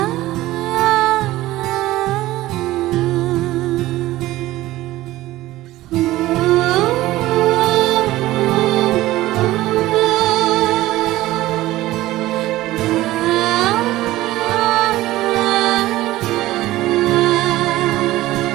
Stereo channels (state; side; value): quieter; left; 16.6 dB